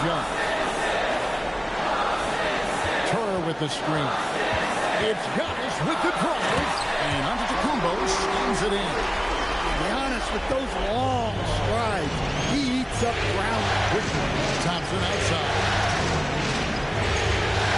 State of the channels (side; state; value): both; identical; correlation 1.00